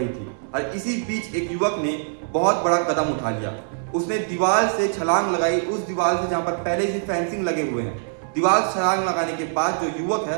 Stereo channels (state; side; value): silent; left; 63 dB below the other